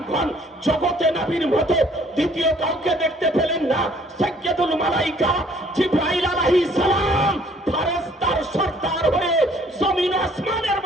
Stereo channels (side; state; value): both; normal; correlation 0.59